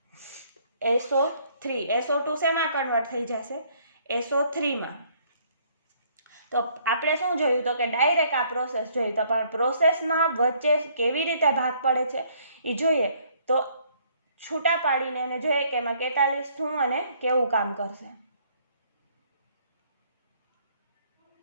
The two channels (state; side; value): inverted; both; correlation -0.64